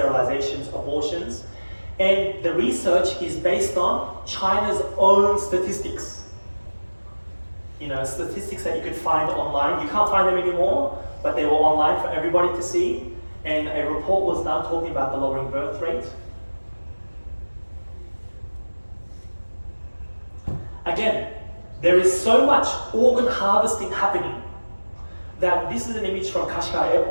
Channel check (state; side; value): inverted; both; correlation -1.00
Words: abortions, and the research is based on China's own statistics. statistics that you could find online. You can't find them anymore, but they were online for everybody to see. And a report was done talking about the lowering birth rate. Again, there is so much organ harvesting happening that this is an image from Kashgar